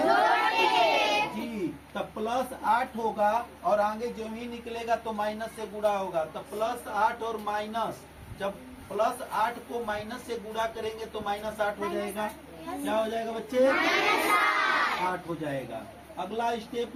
जी, तब +8 होगा और आगे जो ही निकलेगा तो माइनस से गुणा होगा। तो +8 और माइनस, जब +8 को माइनस से गुणा करेंगे तो -8 हो जाएगा। क्या हो जाएगा बच्चे? 8 हो जाएगा। अगला स्टेप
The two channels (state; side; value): identical; both; correlation 1.00